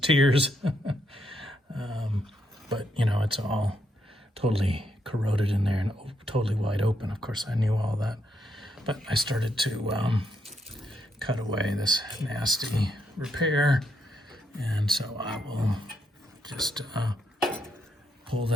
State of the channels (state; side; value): normal; both; correlation 0.78